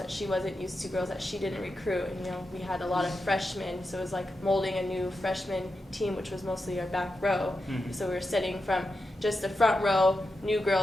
she wasn't used to, girls that she didn't recruit. And, we had a lot of freshmen, so it was like molding a new freshman team, which was mostly our back row. Mm-hmm. So we were setting from just the front row, new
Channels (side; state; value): both; normal; correlation 0.89